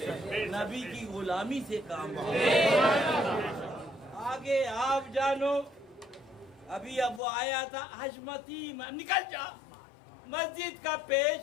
नबी की गुलामी से काम चलेगा। आगे आप जानो। अभी अब वो आया था हजमती, निकल जा मस्जिद का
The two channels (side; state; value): right; drops out; at 7.2 s